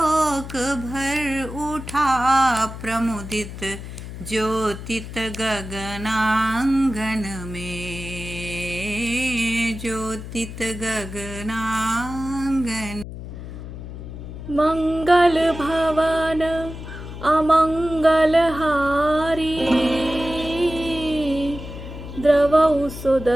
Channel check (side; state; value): left; noise; hum, 10 dB below the sound